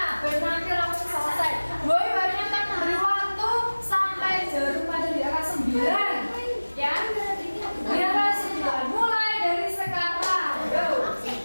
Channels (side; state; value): both; inverted; correlation -1.00